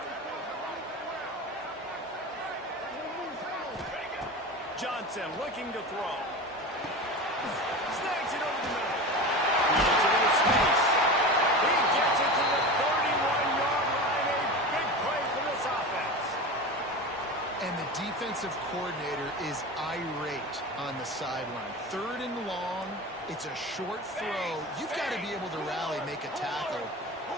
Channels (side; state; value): both; normal; correlation 0.28